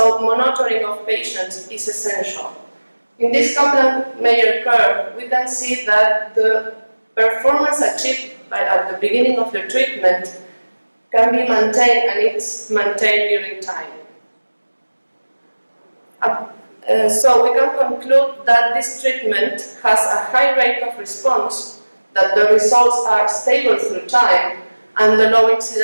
monitoring of patients is essential. In this Kaplan-Meier curve, we can see that the performance achieved at the beginning of the treatment can be maintained, and it's maintained during time. So we can conclude that this treatment has a high rate of response, that the results are stable through time, and the low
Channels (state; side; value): inverted; both; correlation -1.00